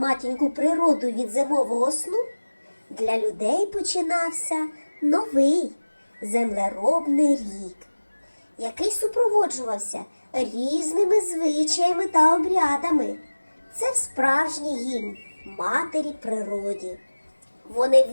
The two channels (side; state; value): both; inverted; correlation -1.00